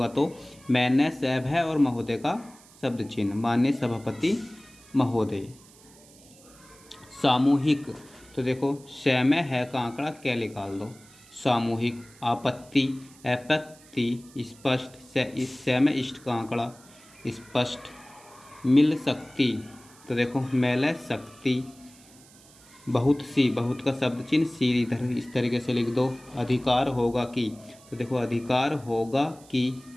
तो मैंने सैब है और महोदय का शब्द चिन्ह, माननीय सभापति महोदय। सामूहिक, तो देखो स में है का आंकड़ा क्या निकाल दो, सामूहिक। आपत्ति, आपत्ति, स्पष्ट, स में इष्ट का आंकड़ा स्पष्ट। मिल सकती, तो देखो मेले शक्ति। बहुत सी, बहुत का शब्द चिन्ह सी इधर इस तरीके से लिख दो। अधिकार होगा कि, तो देखो अधिकार होगा कि।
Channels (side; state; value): right; noise; hiss, 24 dB below the sound